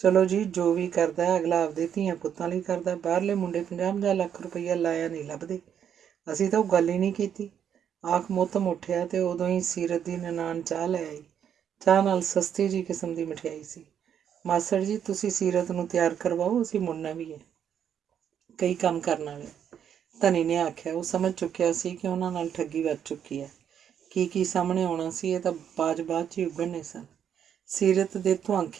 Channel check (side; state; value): left; quieter; 8.8 dB